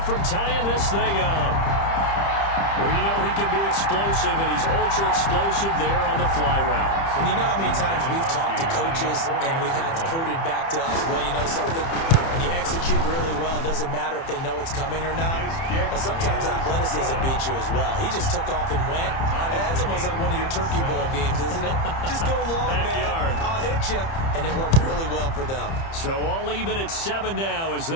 from tying this thing up. Well, you know he can be explosive, and he's ultra-explosive there on the fly route. And you know how many times we've talked to coaches and we've had quoted back to us, well, you know something? When you execute really well, it doesn't matter if they know it's coming or not. But sometimes athleticism beats you as well. He just took off and went. That's almost like one of your Turkey Bowl games, isn't it? Just go long, Backyard. man. I'll hit you. And it worked really well for them. So all even at 7 now as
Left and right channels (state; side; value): late; right; 30 ms